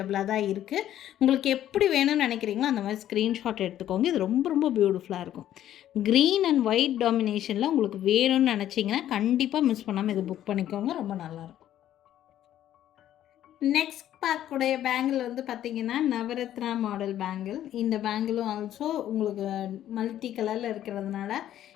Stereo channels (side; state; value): right; quieter; 11.9 dB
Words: தான் இருக்குது. உங்களுக்கு எப்படி வேணும்னு நினைக்கிறீங்களோ அந்த மாதிரி ஸ்க்ரீன்ஷாட் எடுத்துக்கோங்க. இது ரொம்ப ரொம்ப பியூட்டிஃபுல்லாக இருக்கும். க்ரீன் அண்ட் ஒயிட் டாமினேஷனில் உங்களுக்கு வேணும்னு நினச்சிங்கன்னா கண்டிப்பாக மிஸ் பண்ணாமல் இது புக் பண்ணிக்கோங்க. ரொம்ப நல்லாயிருக்கும். நெக்ஸ்ட் பார்க்கக்கூடிய பேங்கிள் வந்து பார்த்திங்கன்னா நவரத்னா மாடல் பேங்கிள். இந்த பேங்கிளும் ஆல்சோ உங்களுக்கு மல்டி கலரில் இருக்கிறதுனால